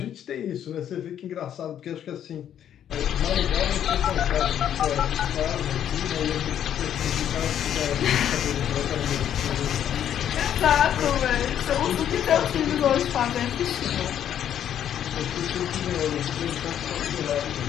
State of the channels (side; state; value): right; quieter; 10.0 dB